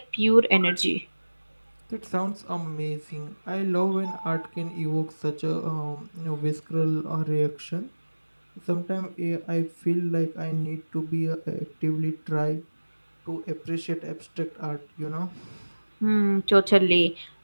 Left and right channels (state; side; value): inverted; both; correlation -1.00